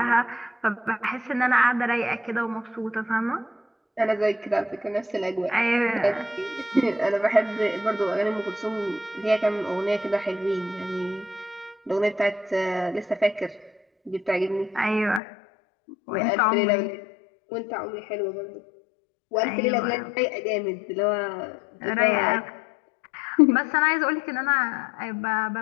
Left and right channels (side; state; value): right; drops out; at 15.2 s